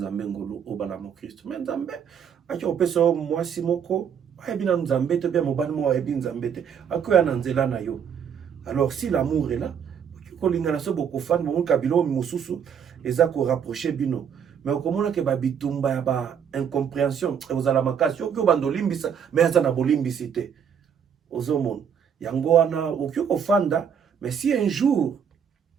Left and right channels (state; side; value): quieter; left; 7.7 dB